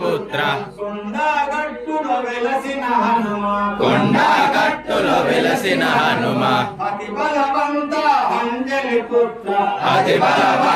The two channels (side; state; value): both; identical; correlation 1.00